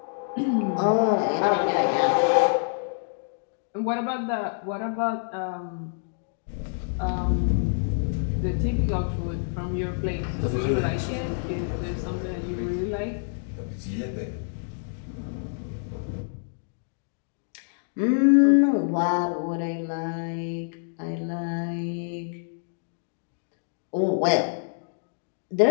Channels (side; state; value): right; silent; digital silence